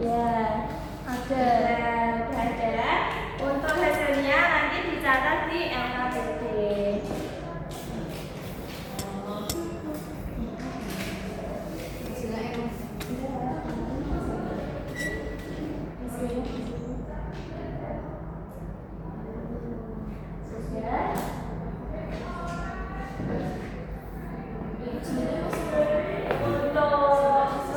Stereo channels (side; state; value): both; identical; correlation 1.00